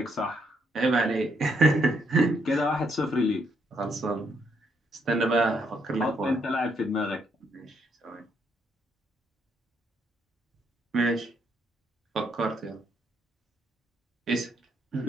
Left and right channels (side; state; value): both; normal; correlation 0.74